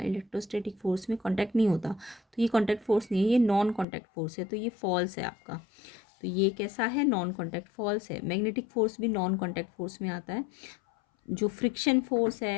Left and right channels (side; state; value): right; drops out; at 3.9 s